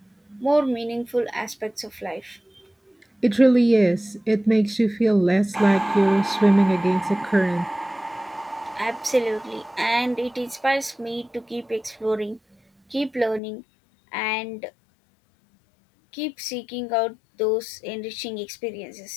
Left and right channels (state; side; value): drops out; right; at 13.4 s